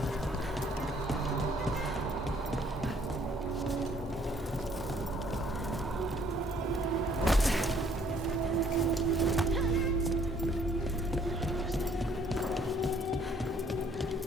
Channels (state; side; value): normal; both; correlation 0.62